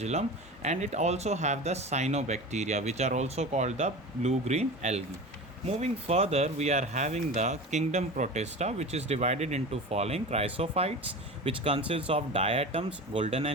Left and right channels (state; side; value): normal; both; correlation 0.31